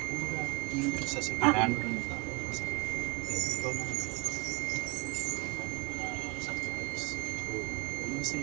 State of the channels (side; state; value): left; quieter; 28.9 dB